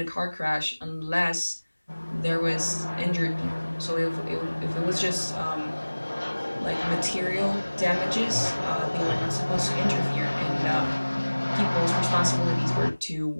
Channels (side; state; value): both; inverted; correlation -1.00